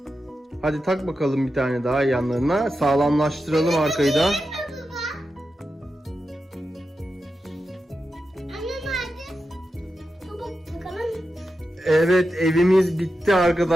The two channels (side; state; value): both; normal; correlation 0.90